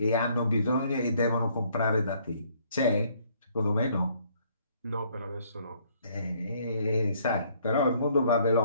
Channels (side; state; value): both; inverted; correlation -0.64